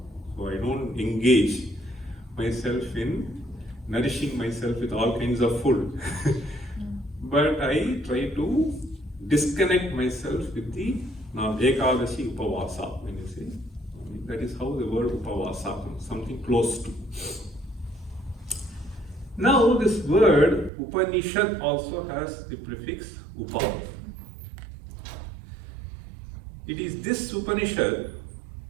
So I don't engage myself in nourishing myself with all kinds of food. but I try to disconnect myself with the Ekadashi Upavasa, when you say. That is how the word Upavasa comes, something close to. Now this word Upanishad also has the prefix Upa. It is this Upanishad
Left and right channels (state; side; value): drops out; left; at 20.7 s